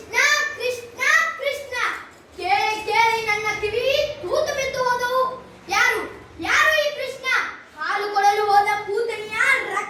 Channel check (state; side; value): identical; both; correlation 1.00